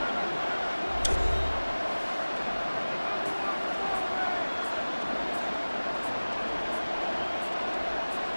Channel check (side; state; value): both; inverted; correlation -1.00